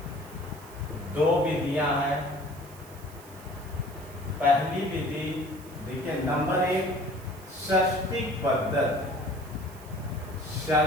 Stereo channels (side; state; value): right; noise; hiss, 21 dB below the sound